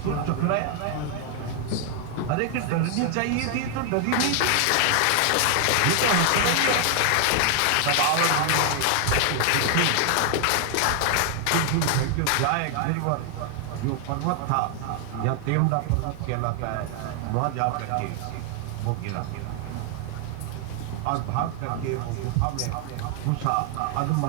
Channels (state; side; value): different; both; correlation 0.00